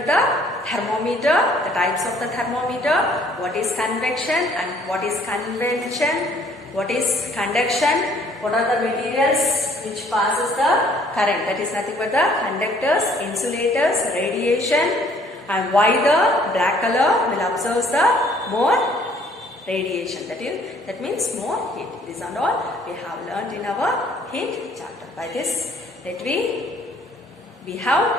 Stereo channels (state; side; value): normal; both; correlation 0.60